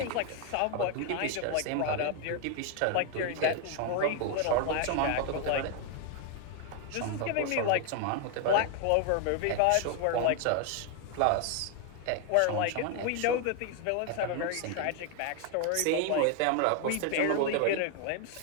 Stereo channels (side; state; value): both; different; correlation 0.00